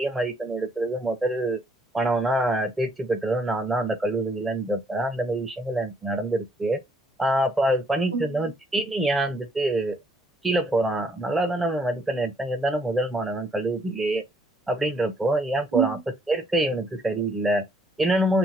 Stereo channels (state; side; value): normal; both; correlation 0.68